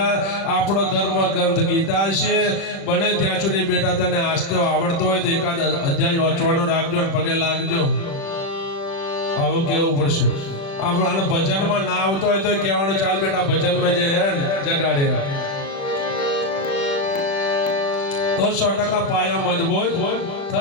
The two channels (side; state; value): right; late; 36 ms